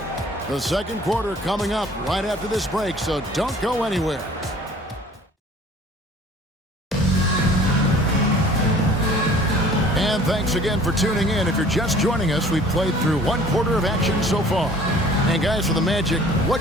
The second quarter coming up right after this break, so don't go anywhere. And thanks again for tuning in. If you're just joining us, we've played through 1 quarter of action so far. And guys, for the Magic,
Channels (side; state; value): both; normal; correlation 0.50